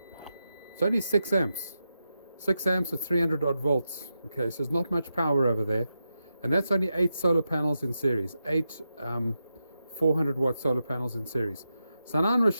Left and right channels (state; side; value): inverted; both; correlation -0.88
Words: it's only 6 amps. 6 amps at 300 odd volts. Okay, so there's not much power over there. And that's only 8 solar panels in series. 8 400 watt solar panels in series. So now I'm going to